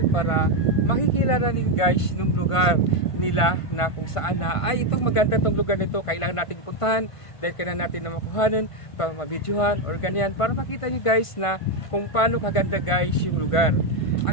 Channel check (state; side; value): late; right; 1.5 ms